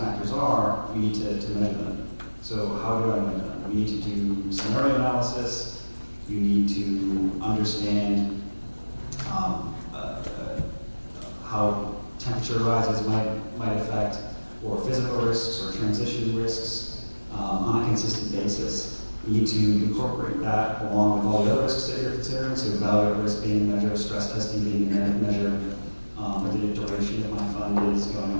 are, we need to measure them. So how do I measure them? We need to do scenario analysis. You need to understand how temperature rises might affect, or physical risks or transition risks on a consistent basis. You need to incorporate that along with all the other risks that you're considering, so value of risk being measured, stress testing being measured, whether the duration of my fund is going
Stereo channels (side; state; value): both; inverted; correlation -1.00